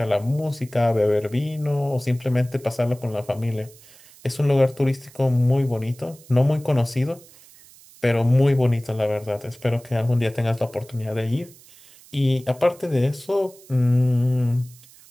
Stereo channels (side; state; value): right; noise; hiss, 24 dB below the sound